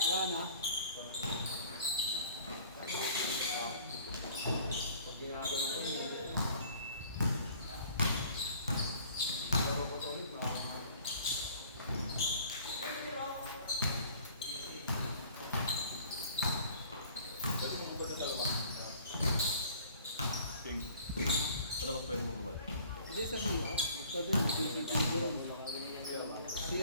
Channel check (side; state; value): both; inverted; correlation -0.52